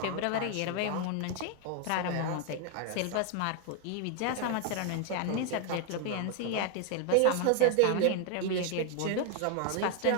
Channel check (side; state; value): both; different; correlation 0.00